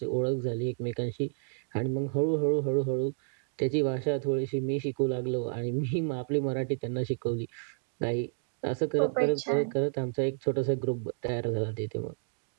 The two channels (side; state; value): left; silent; digital silence